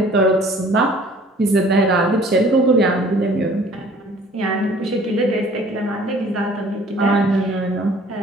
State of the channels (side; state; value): both; normal; correlation 0.53